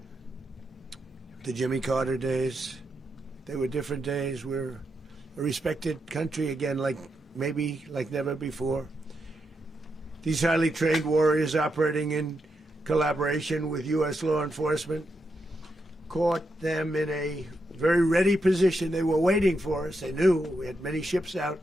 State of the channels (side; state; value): both; normal; correlation 0.84